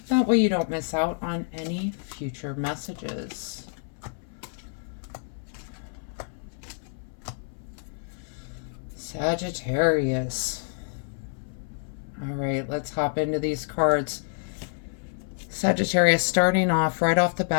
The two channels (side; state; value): right; silent; 59 dB below the other